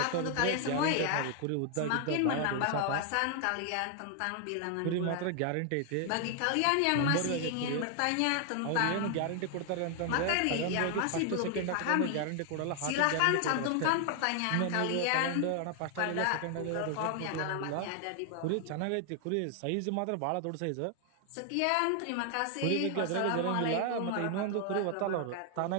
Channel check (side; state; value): both; different; correlation 0.00